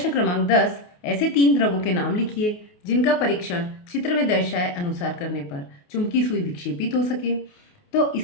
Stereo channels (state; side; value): late; right; 28 ms